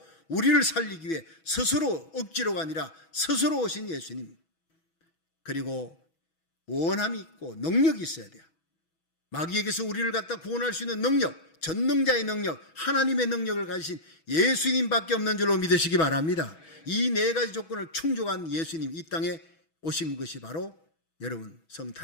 우리를 살리기 위해 스스로 억지로가 아니라 스스로 오신 예수님. 그리고 원함이 있고 능력이 있어야 돼요. 마귀에게서 우리를 갖다 구원할 수 있는 능력, 전능자의 능력, 하나님의 능력을 가지신 예수님밖에 없는 줄로 믿으시기 바랍니다. 이 4가지 조건을 충족한 예수님, 이 땅에 오신 것이 바로 여러분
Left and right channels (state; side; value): late; right; 6.2 ms